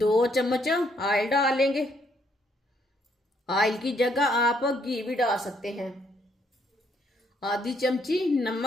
चम्मच ऑयल डालेंगे। ऑयल की जगह आप घी भी डाल सकते हैं। आधी चमची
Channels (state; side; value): normal; both; correlation 0.70